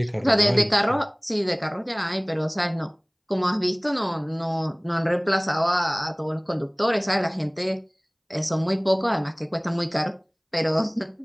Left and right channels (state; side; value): identical; both; correlation 1.00